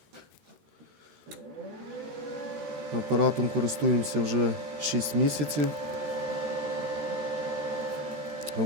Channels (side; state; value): left; late; 13 ms